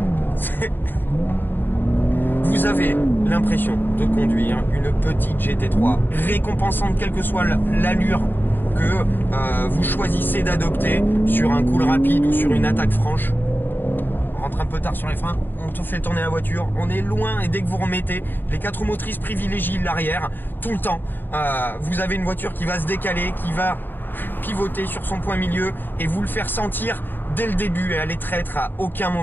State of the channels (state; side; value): late; right; 0.093 ms